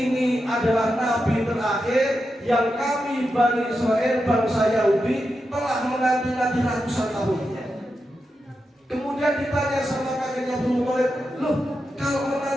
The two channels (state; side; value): normal; both; correlation 0.88